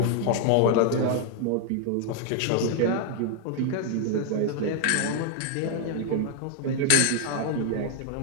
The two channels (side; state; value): both; different; correlation 0.00